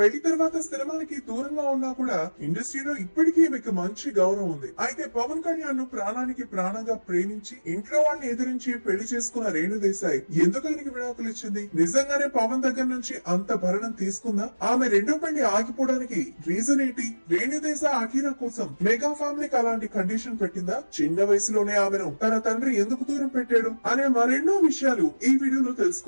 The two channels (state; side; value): inverted; both; correlation -1.00